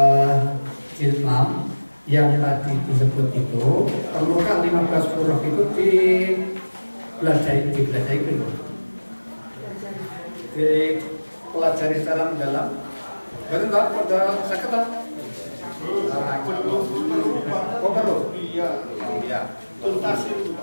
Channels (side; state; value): both; inverted; correlation -1.00